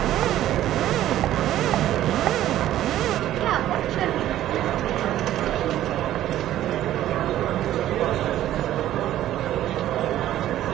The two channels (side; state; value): left; quieter; 13.0 dB